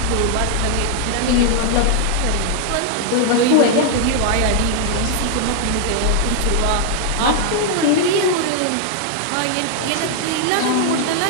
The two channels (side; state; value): both; different; correlation 0.00